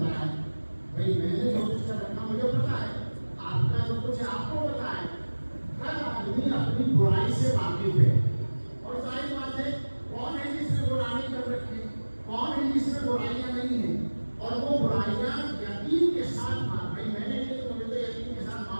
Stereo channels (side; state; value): both; inverted; correlation -1.00